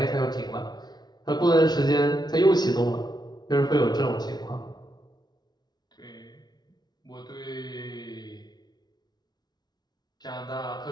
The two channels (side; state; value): right; late; 0.20 ms